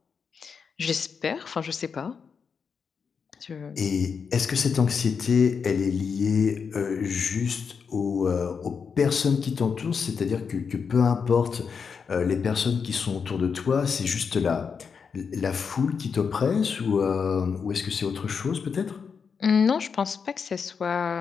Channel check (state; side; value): quieter; right; 6.0 dB